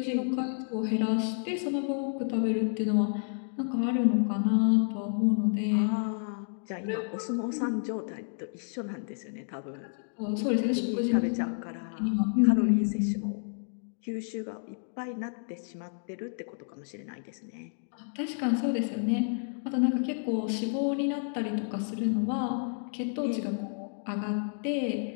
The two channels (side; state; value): right; silent; digital silence